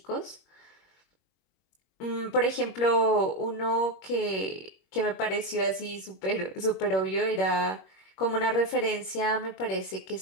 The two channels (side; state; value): right; late; 21 ms